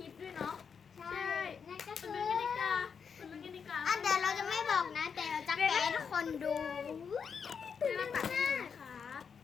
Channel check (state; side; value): quieter; right; 6.4 dB